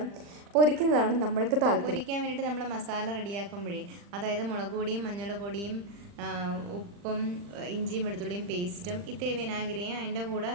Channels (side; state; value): left; late; 40 ms